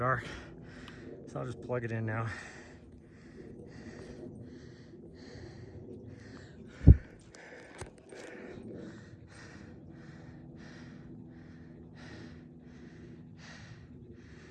So I'll just plug it in now.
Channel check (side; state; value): both; identical; correlation 1.00